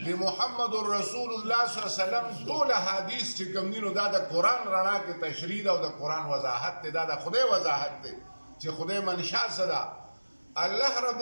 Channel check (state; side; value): inverted; both; correlation -1.00